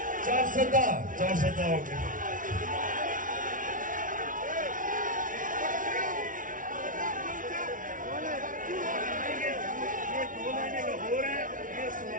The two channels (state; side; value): late; left; 0.38 ms